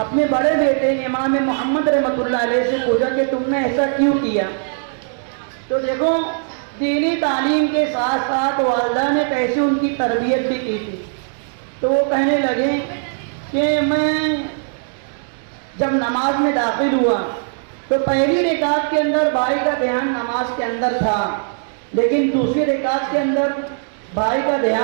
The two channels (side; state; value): left; silent; digital silence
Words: اپنے بڑے بیٹے امام محمد رحمۃ اللہ علیہ سے پوچھا کہ تم نے ایسا کیوں کیا؟ تو دیکھو، دینی تعلیم کے ساتھ ساتھ والدہ نے کیسے ان کی تربیت بھی کی تھی۔ تو وہ کہنے لگے کہ میں جب نماز میں داخل ہوا تو پہلی رکعت کے اندر بھائی کا دھیان نماز کے اندر تھا، لیکن دوسری رکعت کے اندر بھائی کا